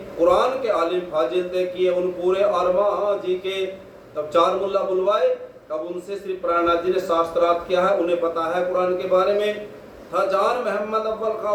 कुरान के आलिम फाजिल तय किए उन पूरे आरमा जी के। तब 4 मुल्ला बुलवाए, अब उनसे श्री प्राणनाथ जी ने शास्त्रार्थ किया है, उन्हें पता है कुरान के बारे में। था जान मोहम्मद अव्वल का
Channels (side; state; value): both; identical; correlation 1.00